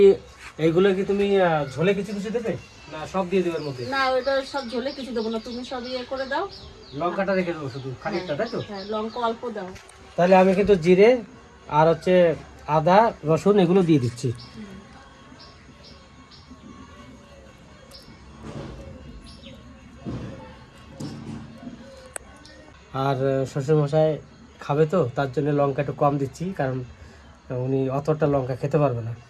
কি তুমি ঝোলে কিছু কিছু দেবে না সব দিয়ে দেবে এর মধ্যে? না, ওইটা সব ঝোলে কিছু দেবো না, তুমি সব ইয়ে করে দাও। লঙ্কাটা রেখে দেবো শুধু খানিকটা, তাই তো? হ্যাঁ, লঙ্কা অল্প দাও। তাহলে আমি কিন্তু জিরে আর হচ্ছে আদা রসুন এগুলো দিয়ে দিচ্ছি। আর শ্বশুরমশাই খাবে তো, তার জন্য লঙ্কা একটু কম দিচ্ছি, কারণ উনি অতটা লঙ্কা খেতে পারবে না,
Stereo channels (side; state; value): both; identical; correlation 1.00